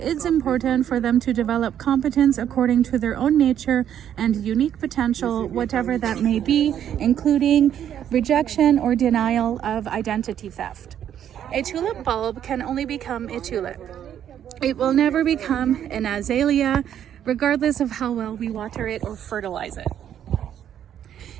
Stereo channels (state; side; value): quieter; left; 9.9 dB